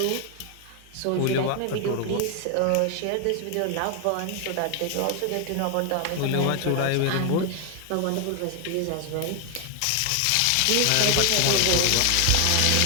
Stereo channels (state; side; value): different; both; correlation 0.00